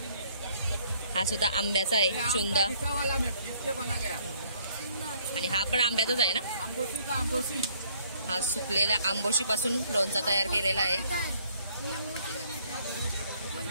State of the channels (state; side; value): inverted; both; correlation -0.64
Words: हा सुद्धा आंब्याचा आहे चुंदा. वाला में 20 बना गया. आणि हा पण आंब्याचाच आहे ना. आंबोशी का आंबोशी. हा सुकलेल्या आंबोशी पासून लोणचा तयार केलेला आहे.